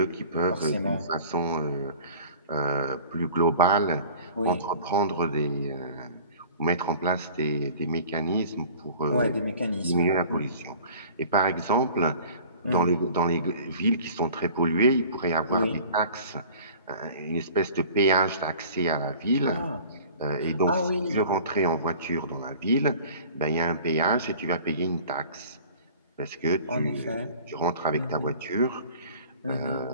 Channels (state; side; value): inverted; both; correlation -0.45